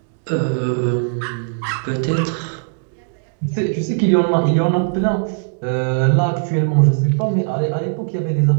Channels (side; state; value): left; silent; digital silence